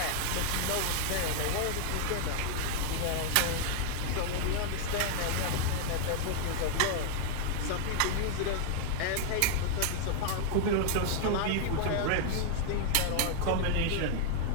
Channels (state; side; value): different; both; correlation 0.00